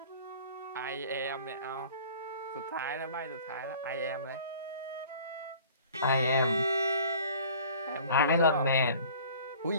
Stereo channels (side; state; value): both; inverted; correlation -0.47